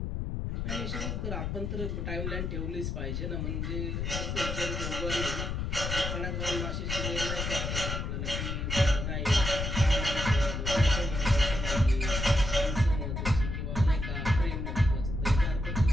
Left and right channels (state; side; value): noise; left; rumble, 3 dB below the sound